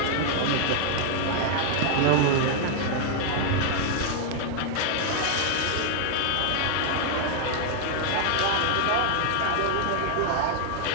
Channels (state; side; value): different; both; correlation 0.00